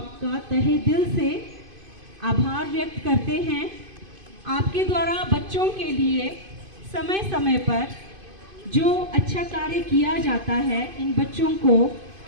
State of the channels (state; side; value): late; left; 2.5 ms